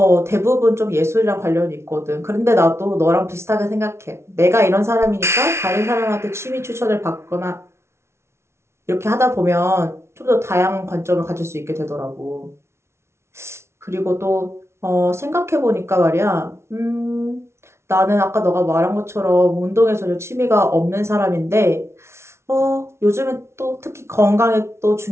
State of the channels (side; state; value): left; late; 0.13 ms